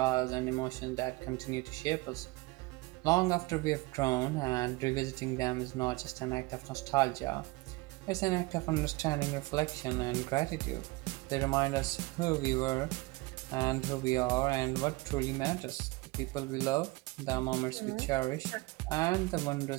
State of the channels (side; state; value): left; quieter; 23.1 dB